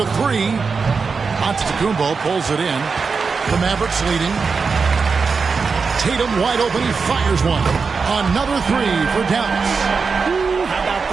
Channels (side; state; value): left; quieter; 5.0 dB